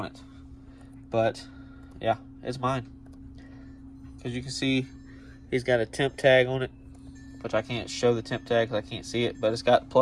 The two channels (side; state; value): both; identical; correlation 1.00